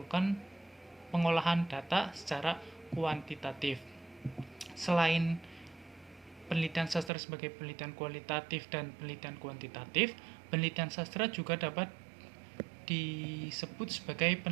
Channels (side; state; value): left; drops out; at 7.1 s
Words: pengolahan data secara kuantitatif. Selain penelitian sastra sebagai penelitian kualitatif dan penelitian kuantitatif, penelitian sastra juga dapat disebut sebagai